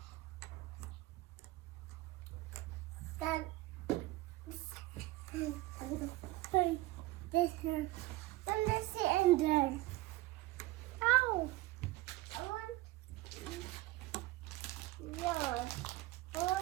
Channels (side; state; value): left; quieter; 18.7 dB